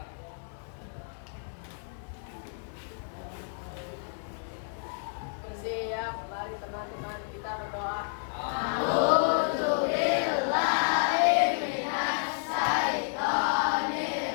Bersiap, mari teman-teman kita berdoa.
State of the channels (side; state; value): right; silent; digital silence